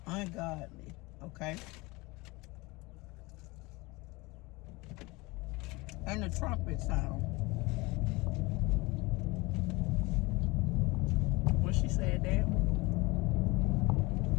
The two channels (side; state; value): right; quieter; 23.6 dB